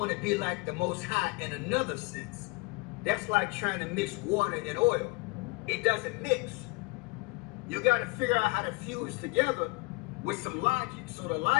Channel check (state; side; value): quieter; right; 27.3 dB